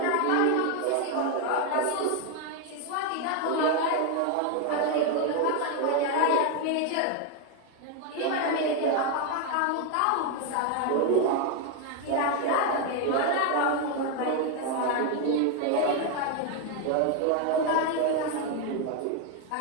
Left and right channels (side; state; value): both; different; correlation 0.01